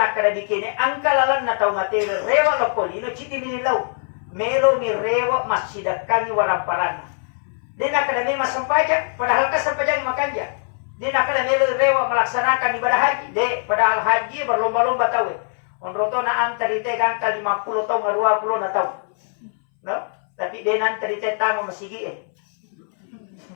bikini ang kalalan na tau matewe rewa lo kodino chiti nililaw melo ni rewa masidakan ni waramparan dia nak kena memang sampaja, padahal kan sampaja makanja. Dia nak kena rewa melaksanakan ibadah haji. Dia padahal haji berlomba-lomba tahu. Onroto na antari te gangka 50 tahun 20 na tahu. No? Tapi dia nanti te tamu masigi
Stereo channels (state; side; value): silent; right; 62 dB below the other